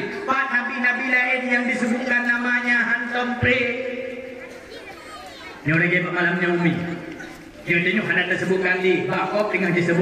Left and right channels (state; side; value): identical; both; correlation 1.00